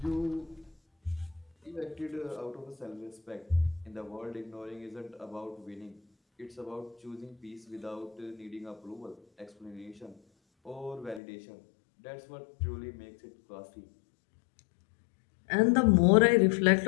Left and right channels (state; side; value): drops out; right; at 11.2 s